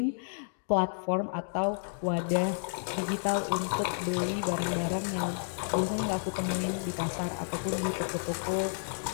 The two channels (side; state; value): right; silent; digital silence